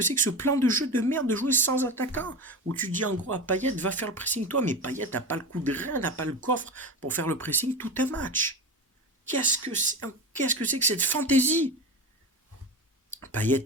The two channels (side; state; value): both; normal; correlation 0.25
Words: c'est que ce plan de jeu de merde de jouer sans attaquant? Où tu dis en gros à Payet, va faire le pressing toi, mais Payet n'a pas le coup de rein, n'a pas le coffre pour faire le pressing tout un match. Qu'est-ce que c'est que cette fantaisie?